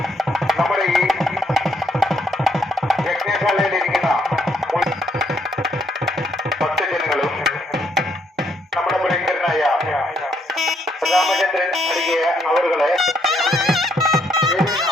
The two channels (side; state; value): both; normal; correlation 0.72